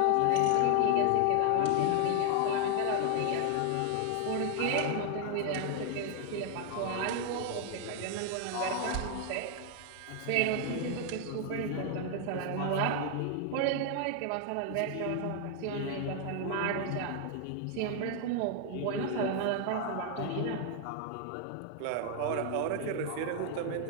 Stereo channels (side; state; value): both; different; correlation 0.00